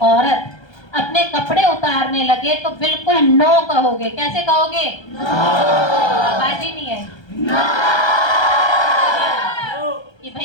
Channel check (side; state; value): right; late; 1.3 ms